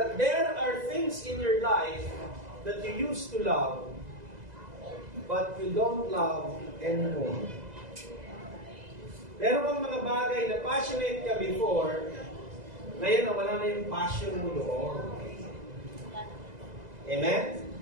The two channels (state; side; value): late; left; 2.0 ms